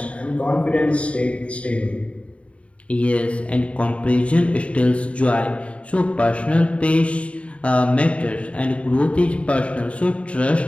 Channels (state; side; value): late; right; 0.063 ms